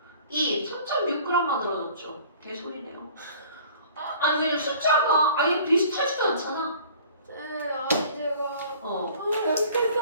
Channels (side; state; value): both; inverted; correlation -0.49